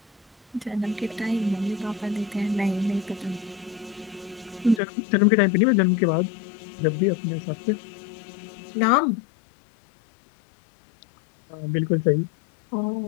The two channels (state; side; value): drops out; right; at 4.8 s